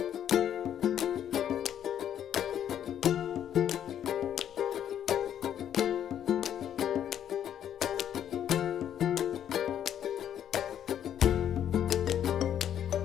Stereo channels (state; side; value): quieter; right; 9.9 dB